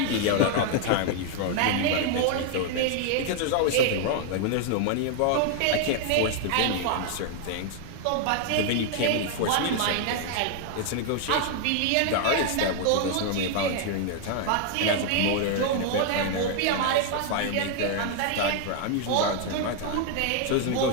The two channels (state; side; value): different; both; correlation 0.00